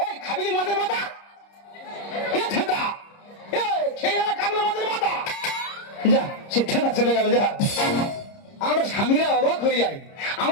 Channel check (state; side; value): late; right; 30 ms